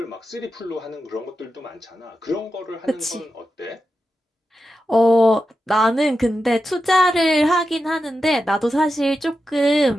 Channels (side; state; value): both; normal; correlation 0.90